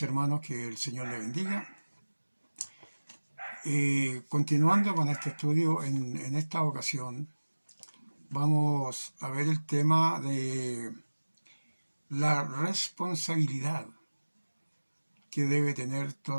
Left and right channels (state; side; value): inverted; both; correlation -1.00